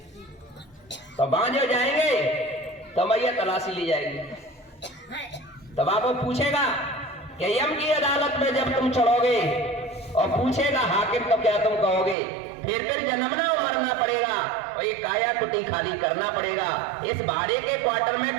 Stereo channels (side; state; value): left; drops out; at 12.2 s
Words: तो बांझ जाएंगे तो मैया तलाशी ली जाएगी। तब आपको पूछेगा कि यम की अदालत में जब तुम चढ़ोगे और पूछेगा हाकिम तो क्या तुम कहोगे? फिर जन्मना और मरना पड़ेगा और ये काया कुटी खाली करना पड़ेगा। इस भाड़े के क्वार्टर